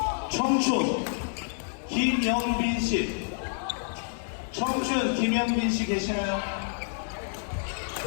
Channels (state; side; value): silent; right; 58 dB below the other